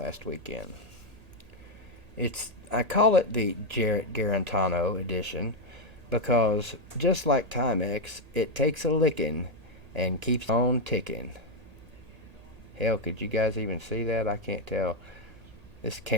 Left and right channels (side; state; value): left; late; 1.8 ms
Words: weekend. I call it the Jarrett Garantano edition because just like Timex, it takes a licking and keeps on ticking. Hell, could you guys even see that? I can't tell. This